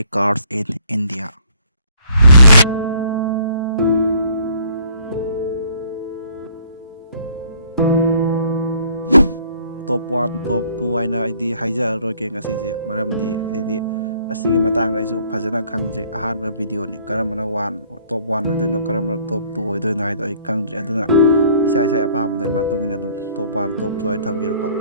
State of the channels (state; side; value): inverted; both; correlation -0.61